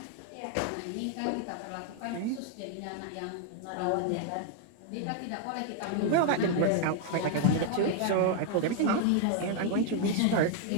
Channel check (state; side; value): different; both; correlation 0.00